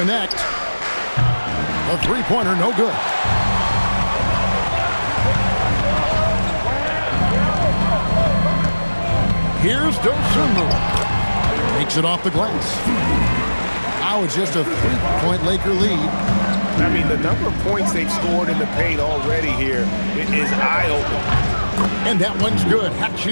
A three-pointer, no good. Here's Dosunmu. Makes it off the glass. Now it's just a three-point Laker lead. I mean, the number of points they've scored in the paint already here is eye-opening. And that one's good.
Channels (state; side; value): inverted; both; correlation -1.00